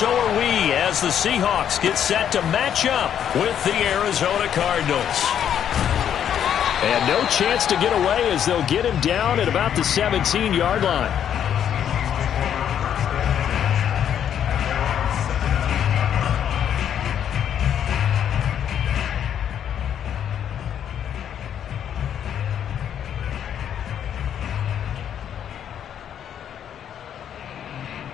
are we, as the Seahawks get set to match up with the Arizona Cardinals. And no chance to get away as they'll get him down at about the 17-yard line.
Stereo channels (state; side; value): quieter; right; 9.3 dB